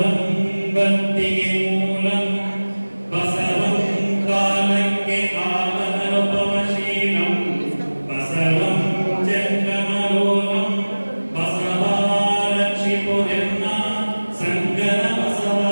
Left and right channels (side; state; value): both; inverted; correlation -1.00